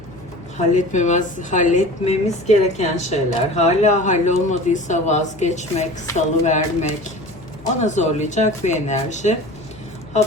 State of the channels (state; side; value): noise; left; hum, 22 dB below the sound